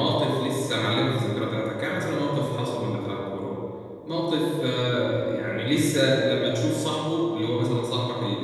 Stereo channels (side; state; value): both; identical; correlation 1.00